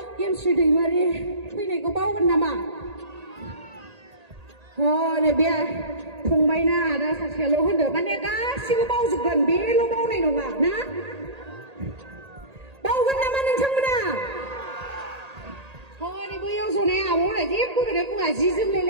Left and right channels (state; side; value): late; left; 1.8 ms